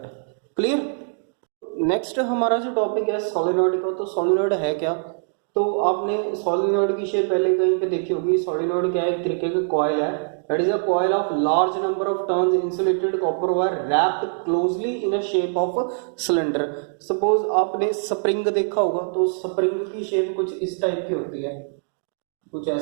क्लियर? नेक्स्ट हमारा जो टॉपिक है सोलेनॉइड का। तो सोलेनॉइड है क्या? तो आपने सोलेनॉइड की शेप पहले कहीं पे देखी होगी। सोलेनॉइड क्या है? एक तरीके का कॉइल है, that is a coil of large number of turns insulated copper wire wrapped closely in a shape of cylinder. Suppose आपने स्प्रिंग देखा होगा, तो स्प्रिंग की शेप कुछ इस टाइप की होती है, कुछ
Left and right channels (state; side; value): silent; left; digital silence